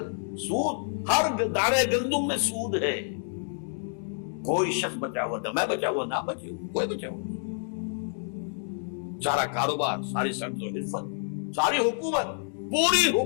سود ہر دانے گندم میں سود ہے. کوئی شخص بچا ہوا نہ، میں بچا ہوا نہ بچے ہوا، کوئی بچا ہوا. سارا کاروبار، ساری صنعت و حرفت، ساری حکومت، پوری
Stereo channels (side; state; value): right; silent; digital silence